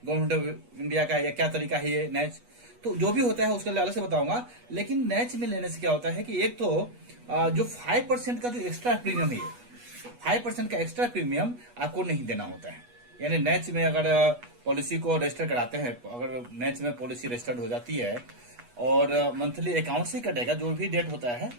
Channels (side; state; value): left; late; 8.3 ms